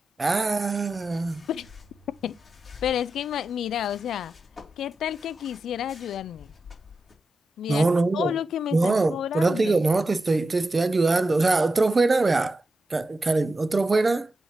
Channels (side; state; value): both; normal; correlation 0.90